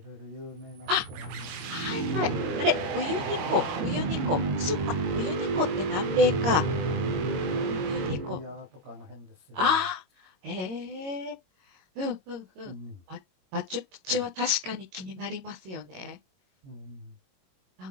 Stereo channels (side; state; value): left; late; 22 ms